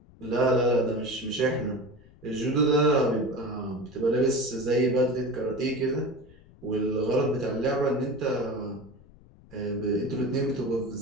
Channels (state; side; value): noise; left; rumble, 24 dB below the sound